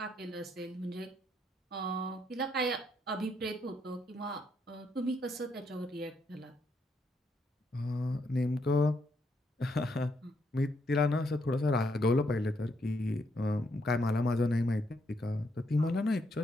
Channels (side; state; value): both; normal; correlation 0.76